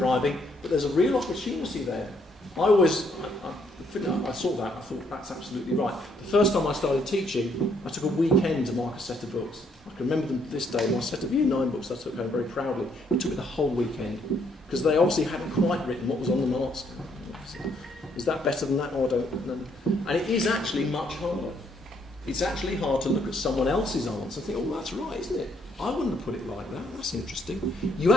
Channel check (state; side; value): normal; both; correlation 0.70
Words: but there's a real opportunity there. I saw that, I thought that's absolutely right. The first time I started teaching, I took a weekend to mark a set of books. I can remember them to this day, my set of Year 9 books I took home very proudly. It took me the whole weekend, because they obviously hadn't quite written what was on the mark scheme. Is that better than that? Oh, I don't know. And it is actually much harder. It's actually hard to look at someone else's answer and think, oh, that's right, isn't it? I wouldn't have put it like that. That's interesting. You